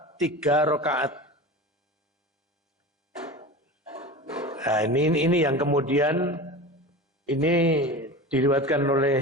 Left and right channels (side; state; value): both; normal; correlation 0.31